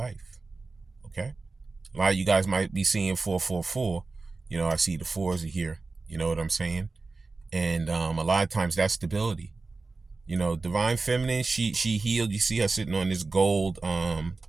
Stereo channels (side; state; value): left; quieter; 3.7 dB